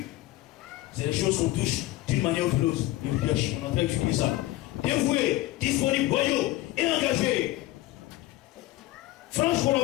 C'est les choses qu'on touche d'une manière ou d'une autre. Le leadership, on est en train d'étudier ça. Dévoué, disponible, loyaux et engagé. Franche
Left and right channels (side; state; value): right; quieter; 16.9 dB